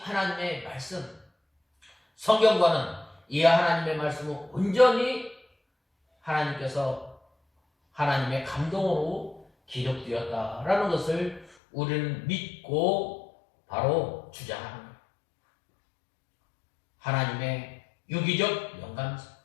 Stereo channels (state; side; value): drops out; right; at 11.5 s